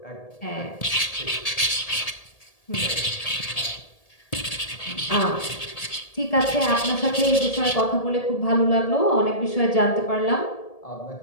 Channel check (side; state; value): right; late; 1.8 ms